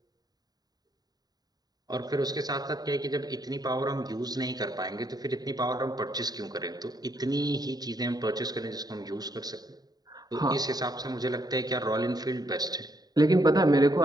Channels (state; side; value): late; left; 0.19 ms